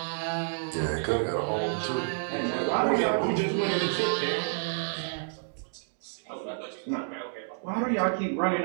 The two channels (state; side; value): silent; left; digital silence